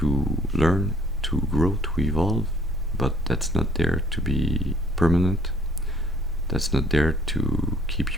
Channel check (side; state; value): both; normal; correlation 0.61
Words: learn, to grow, to evolve, but that's not there to be permanent. That's not there to keep